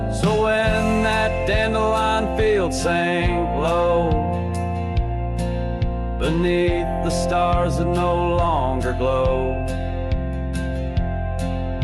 So when that dandelion field sank low, beneath the stars that no longer glow,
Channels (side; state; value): both; identical; correlation 1.00